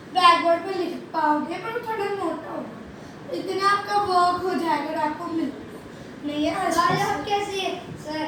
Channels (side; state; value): both; identical; correlation 1.00